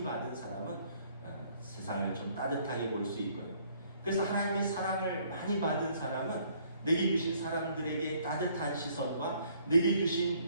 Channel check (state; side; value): inverted; both; correlation -0.63